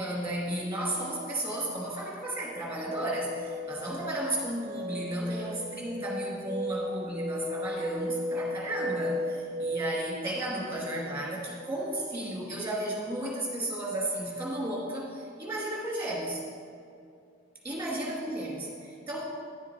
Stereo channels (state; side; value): normal; both; correlation 0.39